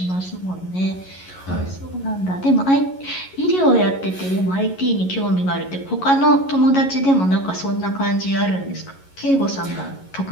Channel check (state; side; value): late; right; 11 ms